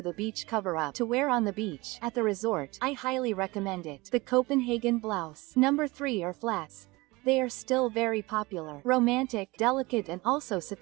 a beach cover-up to wear on the beach, at the resort, I highly recommend it. The Copenhagen blouse. Number 3 are flats. They are still very popular, romantic, delicate, and also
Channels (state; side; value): quieter; left; 22.7 dB